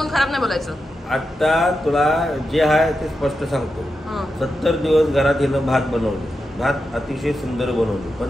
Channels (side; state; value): both; normal; correlation 0.89